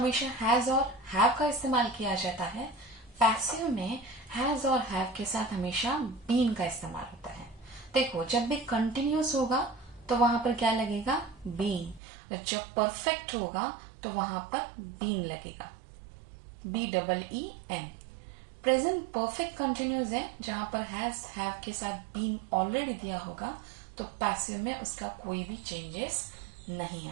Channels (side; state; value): left; drops out; at 12.0 s